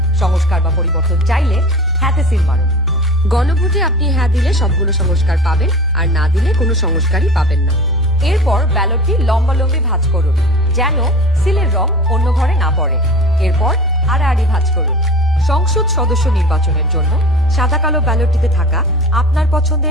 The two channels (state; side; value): normal; both; correlation 0.36